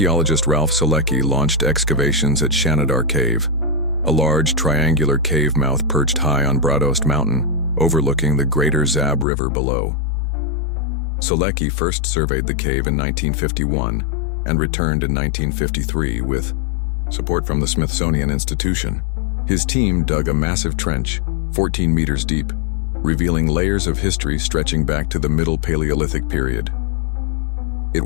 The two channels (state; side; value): drops out; right; at 9.2 s